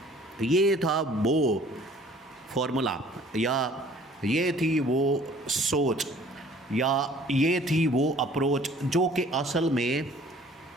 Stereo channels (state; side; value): normal; both; correlation 0.53